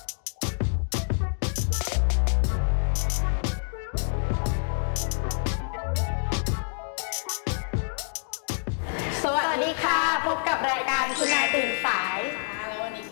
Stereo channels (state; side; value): silent; right; digital silence